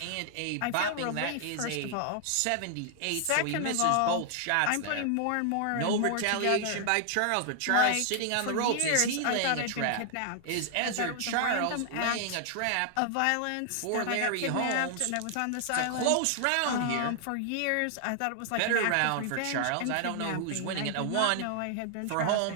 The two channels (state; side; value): different; both; correlation 0.00